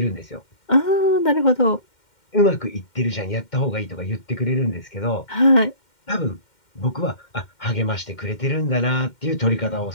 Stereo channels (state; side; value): late; right; 2.1 ms